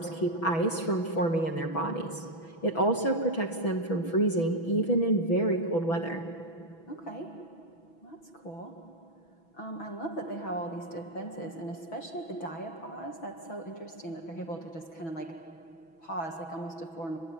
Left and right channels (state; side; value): late; right; 6.1 ms